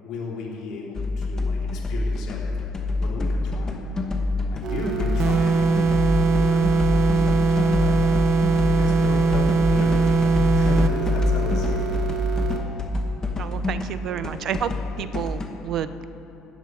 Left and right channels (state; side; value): normal; both; correlation 0.78